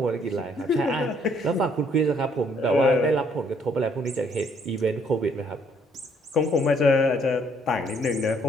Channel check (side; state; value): both; normal; correlation 0.66